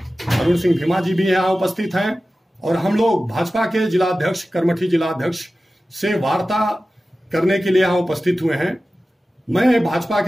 अरुण सिंह भीमा जी भी यहाँ उपस्थित हैं और हम लोग भाजपा के जिलाध्यक्ष कर्मठी जिलाध्यक्ष से वार्ता करने के लिए यहाँ उपस्थित हुए हैं। मैं भाजपा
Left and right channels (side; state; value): both; normal; correlation 0.95